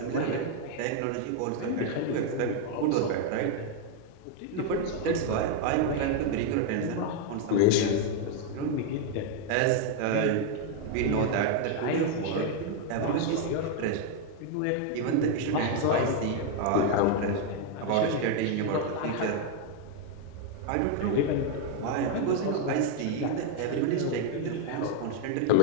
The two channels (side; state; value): both; different; correlation 0.00